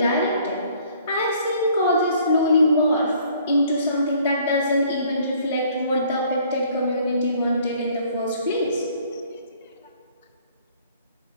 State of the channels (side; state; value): both; inverted; correlation -0.59